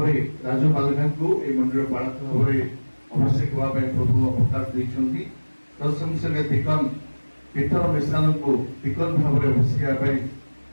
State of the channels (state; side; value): inverted; both; correlation -1.00